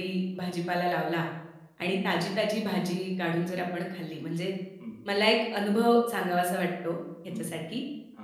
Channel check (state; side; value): identical; both; correlation 1.00